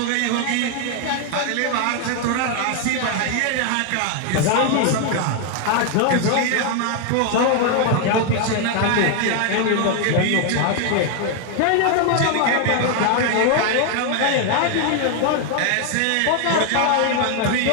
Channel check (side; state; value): both; different; correlation 0.00